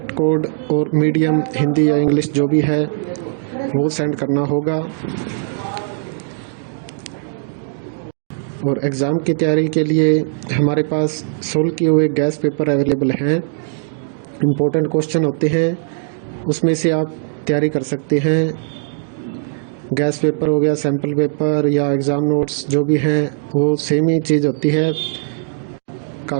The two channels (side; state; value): left; silent; digital silence